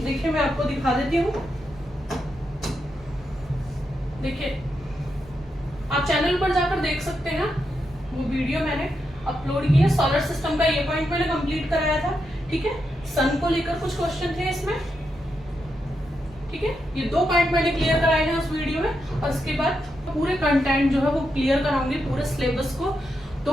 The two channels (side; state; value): both; normal; correlation 0.84